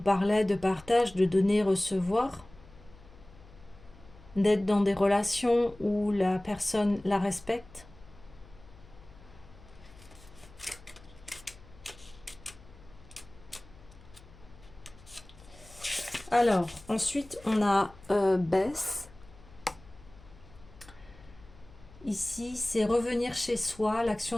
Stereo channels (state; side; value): noise; left; hum, 22 dB below the sound